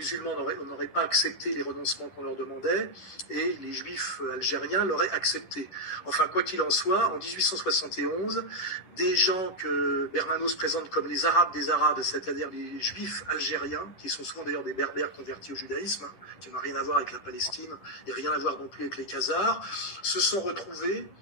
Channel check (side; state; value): right; late; 11 ms